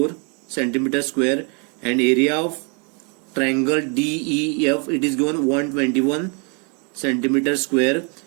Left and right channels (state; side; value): quieter; left; 36.3 dB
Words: centimeter square, and area of triangle DEF, it is given 121 centimeter square,